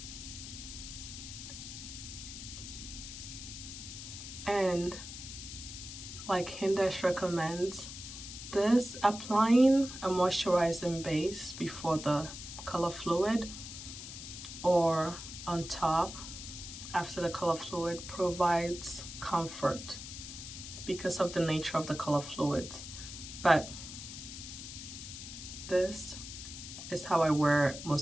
And like Hindash recommends, this applying a moisturizing base before the color fluid or on top after the color fluid provides comfort because of the nature of the color fluids. But this is how I wear it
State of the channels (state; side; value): noise; left; hiss, 10 dB below the sound